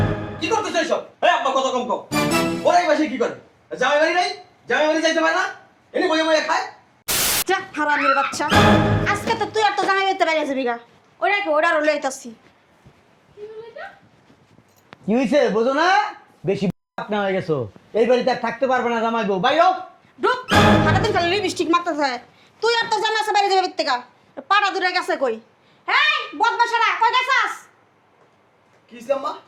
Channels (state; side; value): identical; both; correlation 1.00